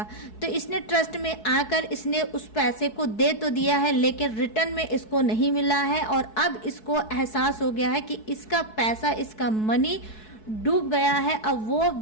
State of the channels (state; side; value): late; right; 4.7 ms